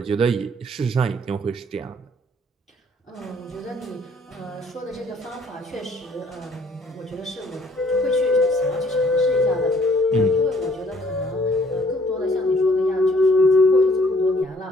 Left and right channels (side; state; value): both; normal; correlation 0.61